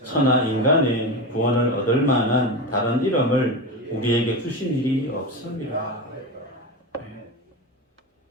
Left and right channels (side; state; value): both; normal; correlation 0.21